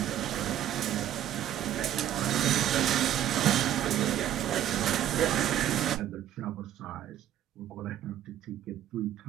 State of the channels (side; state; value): left; quieter; 11.7 dB